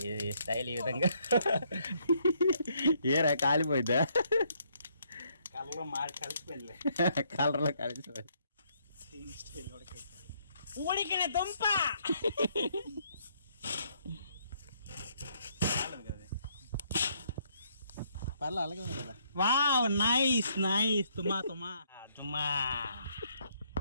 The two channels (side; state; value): both; inverted; correlation -0.70